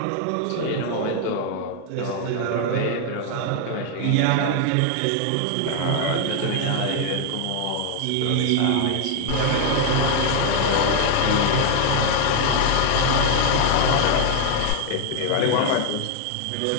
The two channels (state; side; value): different; both; correlation 0.00